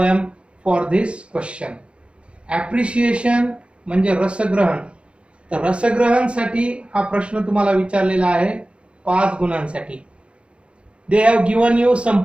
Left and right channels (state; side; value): late; left; 0.058 ms